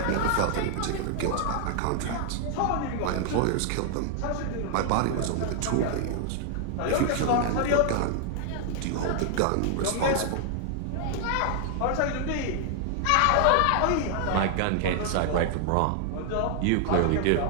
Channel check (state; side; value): different; both; correlation 0.00